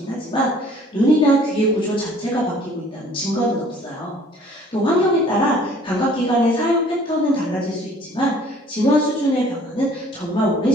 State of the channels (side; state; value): both; normal; correlation 0.54